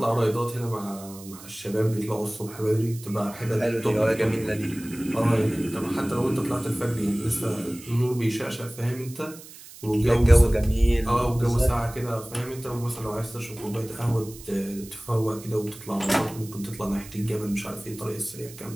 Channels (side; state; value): right; noise; hiss, 17 dB below the sound